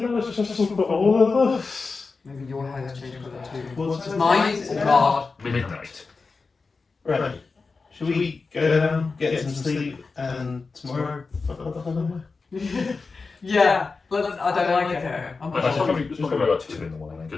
that was just for all of us. Maybe your hair's changed colour too. What's Mine? Oh God. Midnight. Right. Shall we go down, get some sleep, and tomorrow fuck up the whole Yeah, I don't like it here. I'm It's probably about 2 in the morning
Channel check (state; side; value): quieter; right; 4.3 dB